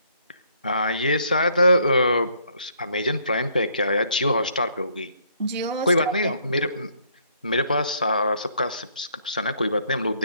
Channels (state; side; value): inverted; both; correlation -0.66